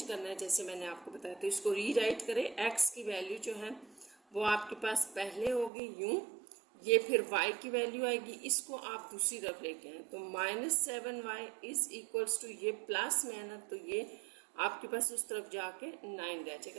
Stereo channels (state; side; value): drops out; left; at 5.7 s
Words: करना है जैसे मैंने आपको बताया। तो इसको रीराइट करें, x की वैल्यू जो है वो आपके पास पहले होगी यूं, ये फिर y की वैल्यू आएगी, इसको आप दूसरी तरफ लेके आए तो -7y इज इक्वल्स टू ये प्लस में है ना, तो ये आपके पास उस तरफ जाके 9 रह